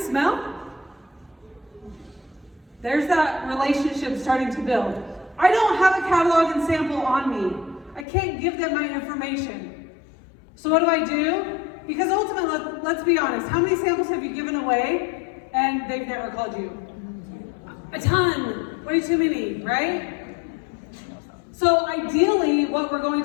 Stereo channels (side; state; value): right; drops out; at 8.1 s